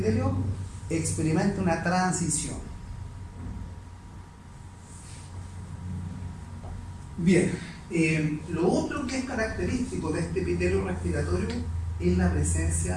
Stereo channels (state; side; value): identical; both; correlation 1.00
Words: experimenta una transición. Bien, lo otro que es característico de este epitelio respiratorio es la